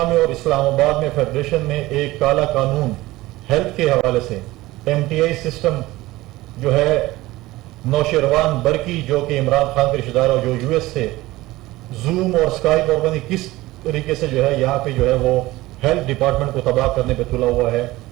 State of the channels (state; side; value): quieter; left; 18.4 dB